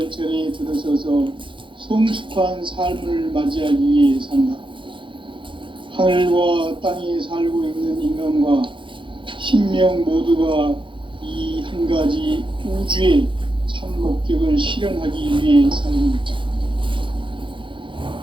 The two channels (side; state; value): left; late; 0.24 ms